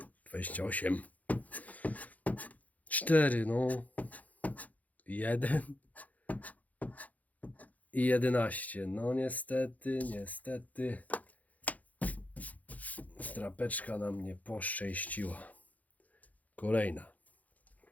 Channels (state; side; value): late; right; 0.076 ms